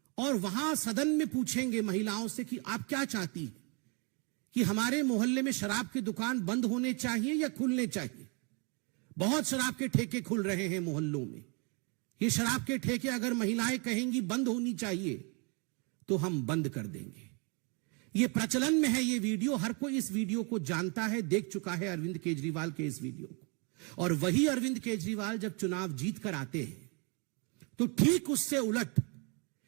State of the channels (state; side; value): quieter; left; 33.5 dB